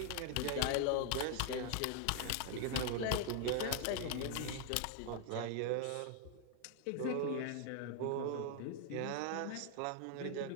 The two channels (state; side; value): different; both; correlation 0.00